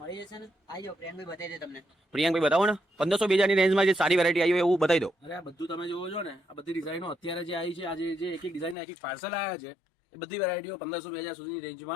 આવી જાઓ પ્રિયાંકભાઈ બતાવી દે તમને. પ્રિયાંકભાઈ બતાવો ને 1500 2000 ની રેન્જમાં જે સારી વેરાયટી આવી હોય એવું બતાવી દો. અરે આ બધું તમે જોવો છો ને, આ બધી ડિઝાઇનો અત્યારે જે આવી છે, આજે જે એક એક ડિઝાઇન એક એક પાર્સલ આવ્યા છે, એ બધી વેરાયટીઓ 1500 2000 સુધીની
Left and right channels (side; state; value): right; drops out; at 8.8 s